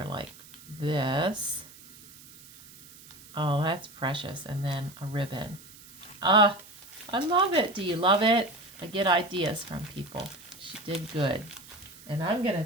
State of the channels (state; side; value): noise; right; hiss, 20 dB below the sound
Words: like this. Oh, that's precious. And then a ribbon. I love it. Do you love it? I get ideas from people. She did good. And I'm going to